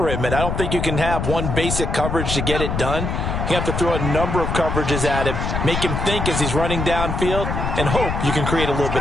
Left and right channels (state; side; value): noise; left; rumble, 2 dB below the sound